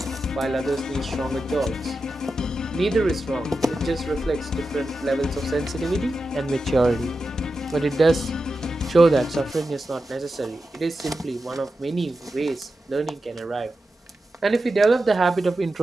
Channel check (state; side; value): normal; both; correlation 0.91